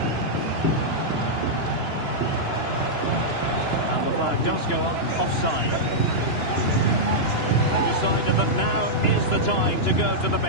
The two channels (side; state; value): right; late; 2.9 ms